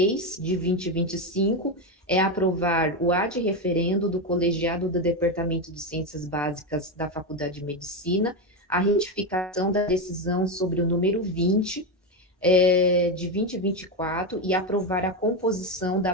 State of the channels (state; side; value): normal; both; correlation 0.12